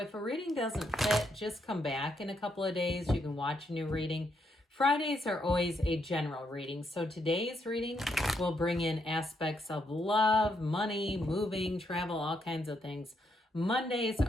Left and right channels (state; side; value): normal; both; correlation 0.77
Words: a reading doesn't fit, just come back in a couple of days. You can watch a new reading. Fridays are always a general reading. So today's reading will bring in aspects of love, money, moving, travel, all kinds of things. Mondays